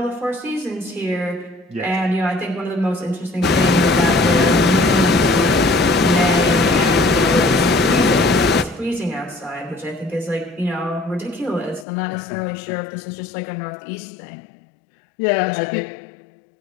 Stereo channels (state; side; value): drops out; right; at 11.9 s